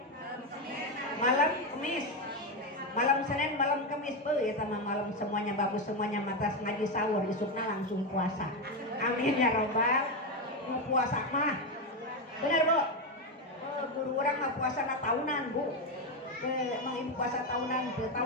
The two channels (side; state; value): both; normal; correlation 0.10